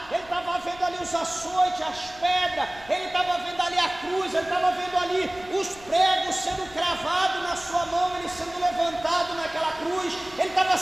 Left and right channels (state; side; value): noise; left; rumble, 21 dB below the sound